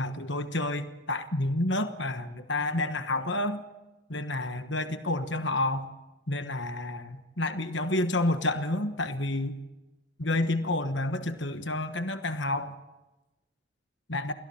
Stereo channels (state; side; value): normal; both; correlation 0.27